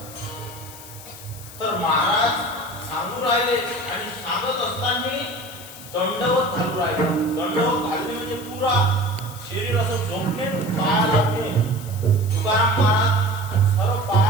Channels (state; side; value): noise; left; hiss, 16 dB below the sound